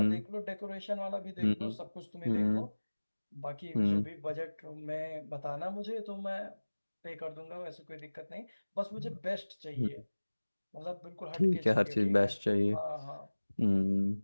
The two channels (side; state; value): both; inverted; correlation -1.00